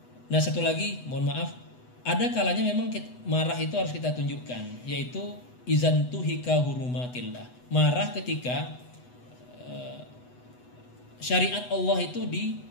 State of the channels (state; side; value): late; right; 8.1 ms